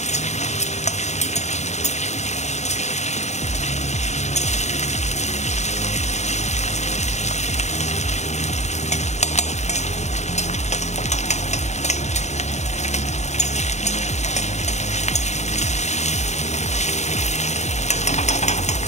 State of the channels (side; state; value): right; late; 0.33 ms